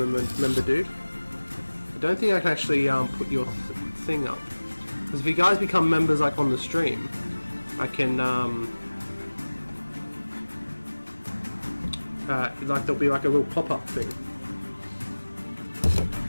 a member, dude. I don't think I can actually put your thing up. Because if you guys become members like on the stream, I can like there'll be like a little pop-up thing.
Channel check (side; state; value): both; inverted; correlation -1.00